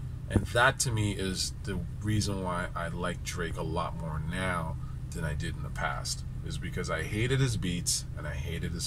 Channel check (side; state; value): both; identical; correlation 1.00